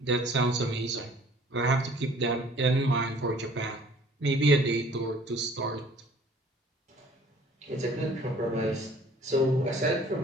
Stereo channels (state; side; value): normal; both; correlation 0.53